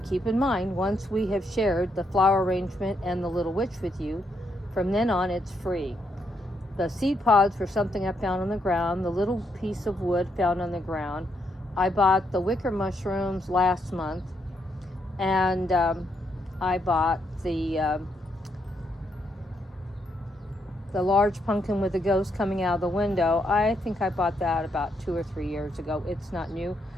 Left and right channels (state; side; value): normal; both; correlation 0.77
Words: keep in mind, once we have shared the flower arrangement and the little witch with you, from then on it's free. The seed pods were something I found on the ground, the little piece of wood found on the ground. I bought the wicker mushrooms last month, and I bought the large pumpkin with the ghost coming out of the window. I think I bought that about 2 or 3 years ago. It's not new,